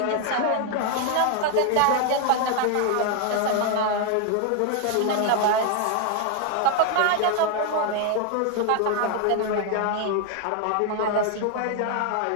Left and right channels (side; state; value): both; different; correlation 0.00